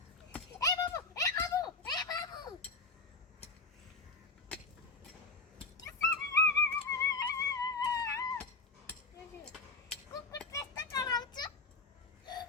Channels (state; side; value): quieter; right; 3.8 dB